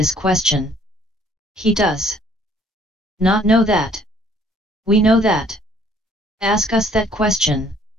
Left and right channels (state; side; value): normal; both; correlation 0.60